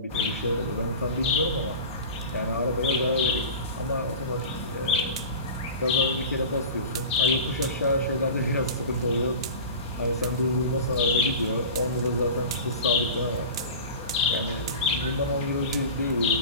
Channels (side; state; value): both; inverted; correlation -0.33